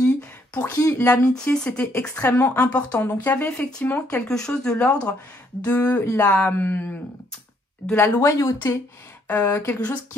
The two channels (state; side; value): normal; both; correlation 0.69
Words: pour qui l'amitié, c'était extrêmement important. Donc, il y avait effectivement quelque chose de l'ordre de la loyauté, quelque chose